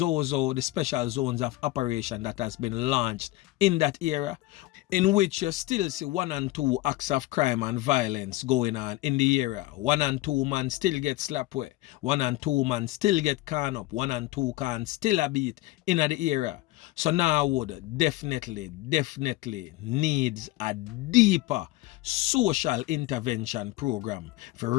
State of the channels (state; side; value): quieter; right; 18.1 dB